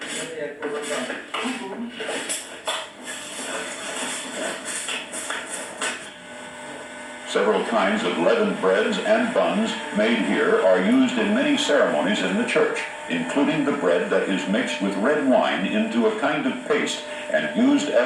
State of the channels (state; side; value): identical; both; correlation 1.00